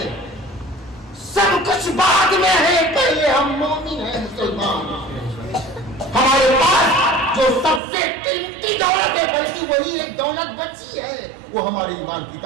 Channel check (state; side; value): drops out; left; at 7.8 s